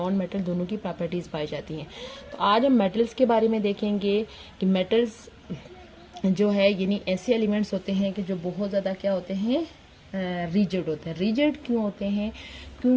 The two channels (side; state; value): both; identical; correlation 1.00